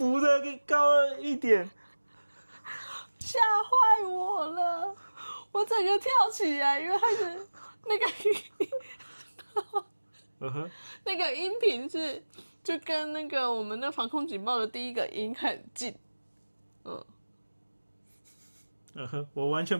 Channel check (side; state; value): both; inverted; correlation -1.00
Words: 的更高了一点，吓坏我了，我整个跳起来，因为它是那个音频是就跟那个我们的防空警报的第一个音很近，我完